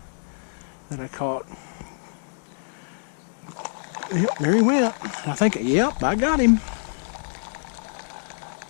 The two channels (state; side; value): silent; right; digital silence